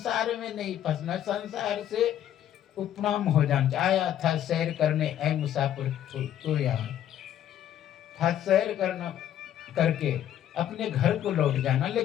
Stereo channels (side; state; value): right; quieter; 11.0 dB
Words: में नहीं फंसना, संसार से उपनाम हो जाना। आया था सैर करने ऐ मुसाफिर तो यहाँ था सैर करना करके अपने घर को लौट जाना,